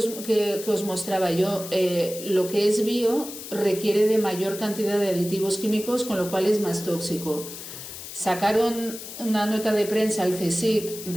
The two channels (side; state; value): left; noise; hiss, 11 dB below the sound